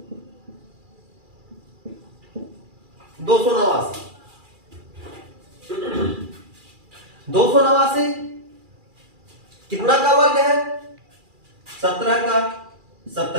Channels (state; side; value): late; left; 2.4 ms